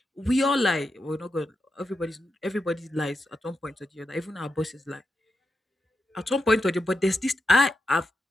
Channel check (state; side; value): normal; both; correlation 0.87